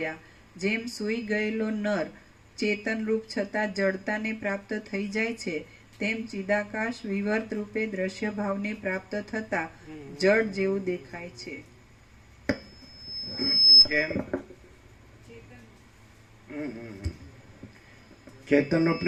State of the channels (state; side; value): identical; both; correlation 1.00